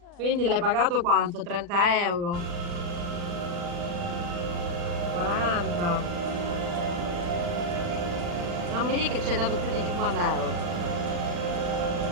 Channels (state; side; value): late; left; 40 ms